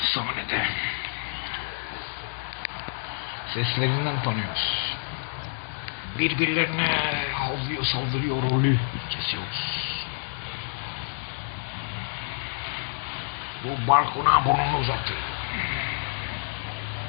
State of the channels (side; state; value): right; silent; digital silence